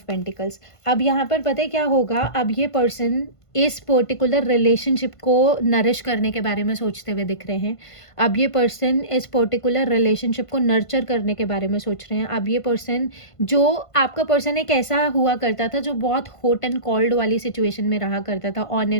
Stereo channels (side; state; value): right; late; 1.5 ms